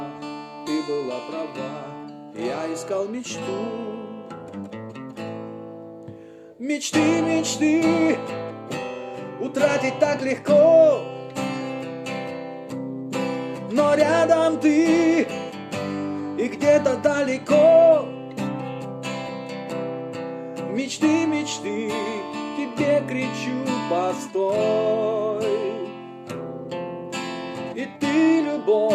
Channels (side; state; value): both; identical; correlation 1.00